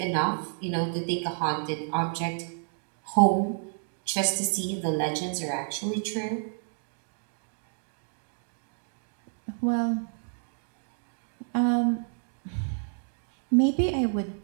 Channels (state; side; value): silent; left; 57 dB below the other